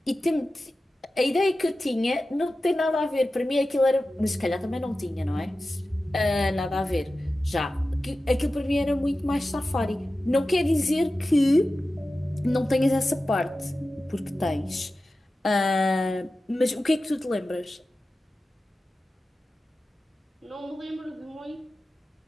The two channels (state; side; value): normal; both; correlation 0.94